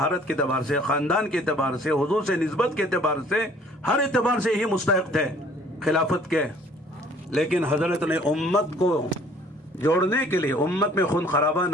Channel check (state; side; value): normal; both; correlation 0.55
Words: کے اعتبار سے، خاندان کے اعتبار سے، حضور سے نسبت کے اعتبار سے، ہر اعتبار سے ہی مستحق تھے خلافت کے، لیکن حضرت نے امت کو جوڑنے کے لیے، امت میں خون خرابہ